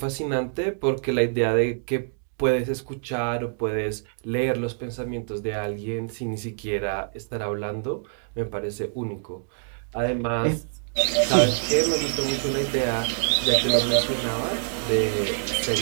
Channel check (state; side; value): silent; left; digital silence